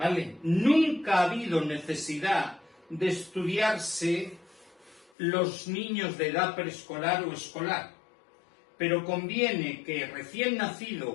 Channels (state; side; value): drops out; right; at 5.1 s